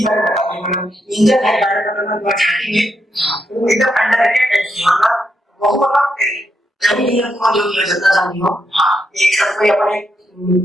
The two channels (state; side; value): normal; both; correlation 0.81